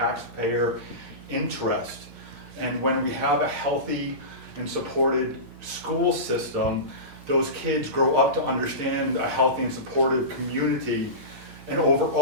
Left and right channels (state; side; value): late; left; 8.7 ms